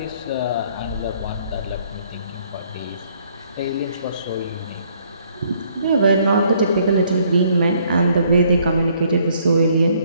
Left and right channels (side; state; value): both; inverted; correlation -0.65